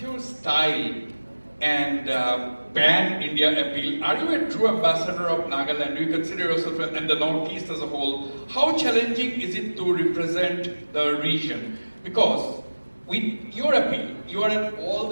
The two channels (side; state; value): both; inverted; correlation -1.00